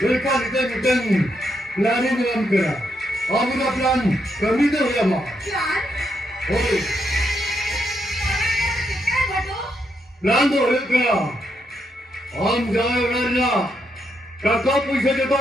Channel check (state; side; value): normal; both; correlation 0.79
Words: kita bukan planning dalam kera. Amuna plan kami tu ya mak. Plan? Oi. Kita betul? Plan tu ya kera. Am jalan kerja. Kakak puisi